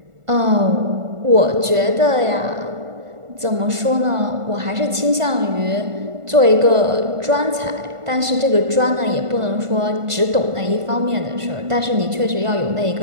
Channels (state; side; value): late; left; 1.5 ms